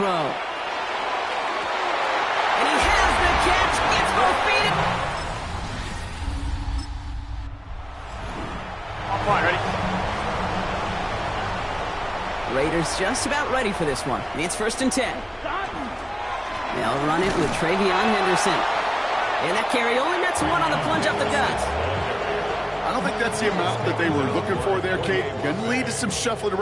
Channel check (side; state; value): both; identical; correlation 1.00